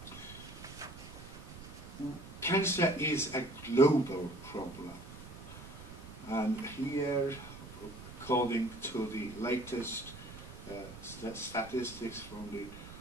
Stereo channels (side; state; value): right; noise; rumble, 14 dB below the sound